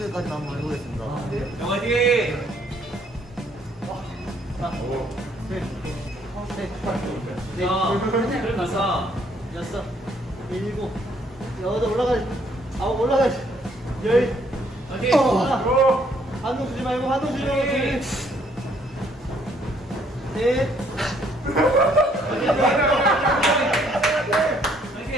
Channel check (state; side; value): normal; both; correlation 0.66